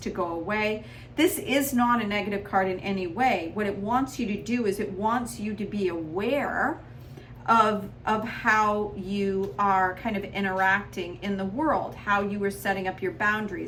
go away. This is not a negative card in any way. What it wants you to do is it wants you to be aware of how you are kind of interacting in the world, how you are setting up your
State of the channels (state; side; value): identical; both; correlation 1.00